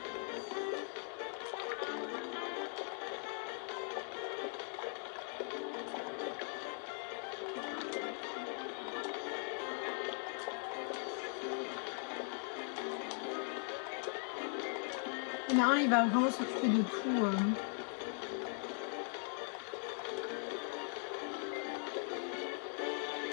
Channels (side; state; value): right; silent; 51 dB below the other